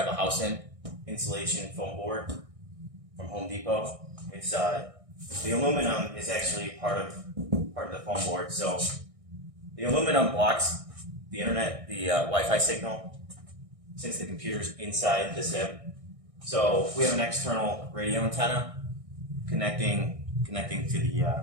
a house in, insulation foam board from Home Depot. It's the aluminum is actually part of the foam board. So the aluminum blocks the internet, the Wi-Fi signal, since the computer's inside the sim. So we have an external radio antenna connecting to the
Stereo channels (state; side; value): late; left; 1.6 ms